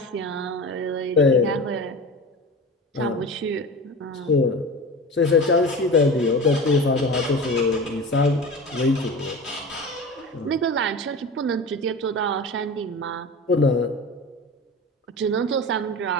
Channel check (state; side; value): normal; both; correlation 0.31